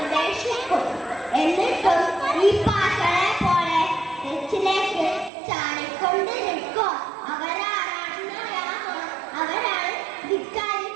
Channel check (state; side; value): drops out; left; at 5.3 s